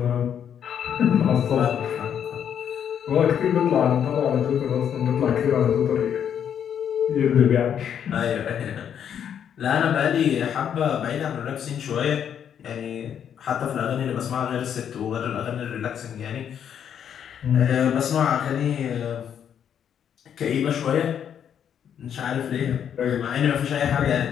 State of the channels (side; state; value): right; quieter; 8.7 dB